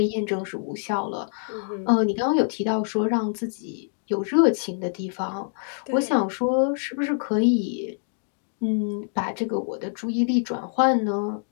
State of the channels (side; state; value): right; silent; digital silence